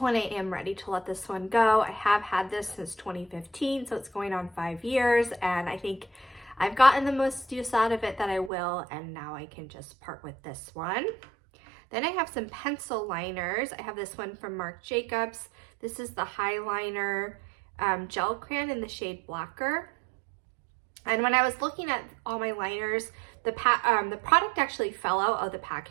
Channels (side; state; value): left; drops out; at 8.5 s